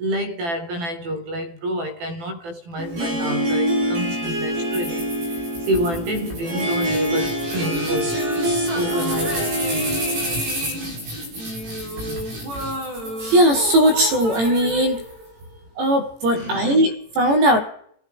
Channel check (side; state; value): left; late; 18 ms